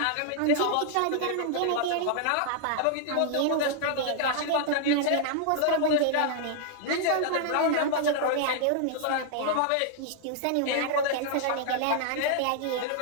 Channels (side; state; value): both; different; correlation -0.01